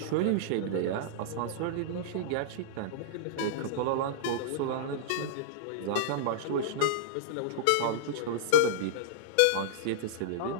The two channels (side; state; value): both; different; correlation -0.02